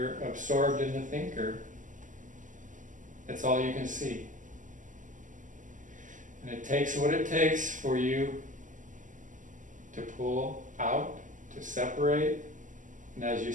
absorbed in the thinker, that's all you can see. And it takes what it takes for you to pull out, to separate. And as you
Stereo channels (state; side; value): late; left; 0.37 ms